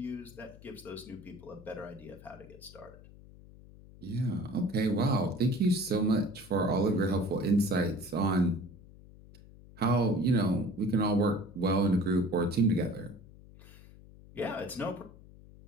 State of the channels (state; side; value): noise; left; hum, 21 dB below the sound